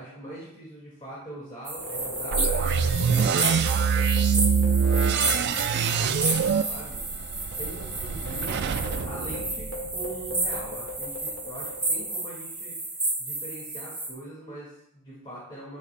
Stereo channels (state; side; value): quieter; left; 4.7 dB